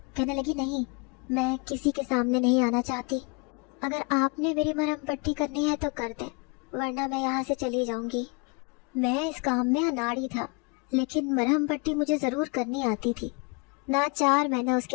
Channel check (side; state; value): right; quieter; 32.3 dB